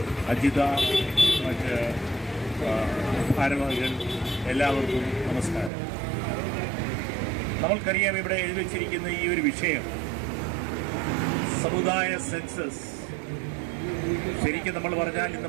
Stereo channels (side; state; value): left; drops out; at 5.7 s